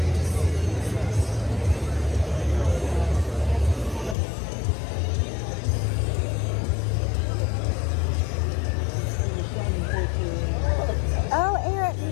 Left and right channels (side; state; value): right; drops out; at 4.2 s